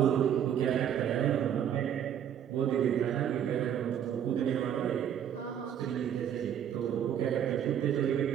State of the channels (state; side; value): quieter; left; 9.4 dB